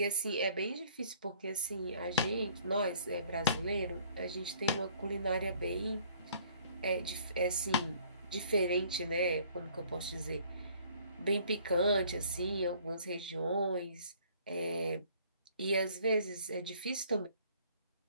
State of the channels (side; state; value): both; inverted; correlation -0.57